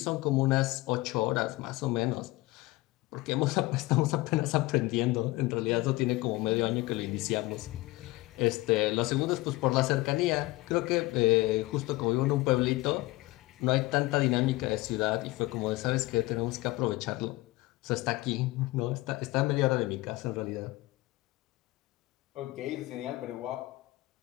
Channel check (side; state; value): right; quieter; 20.3 dB